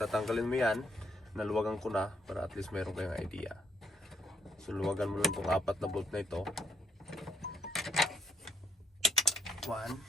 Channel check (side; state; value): both; normal; correlation 0.72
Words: mo yan. Naluwagan ko na para at least meron kayong idea. So luwagan mo lang itong apat na bolt na ito. 1, 2,